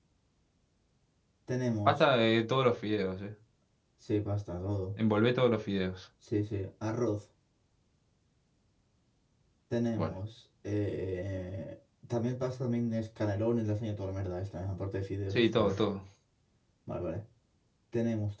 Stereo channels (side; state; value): both; identical; correlation 1.00